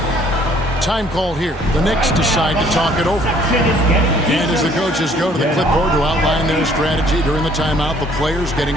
Time called here. The Knicks decide to talk it over. And as the coaches go to the clipboard to outline their strategy during the timeout, the players getting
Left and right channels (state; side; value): normal; both; correlation 0.59